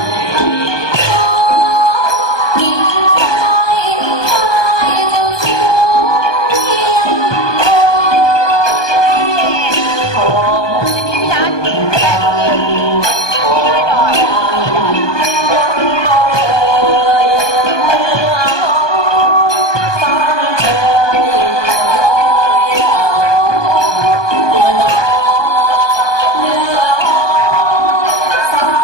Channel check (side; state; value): right; late; 1.2 ms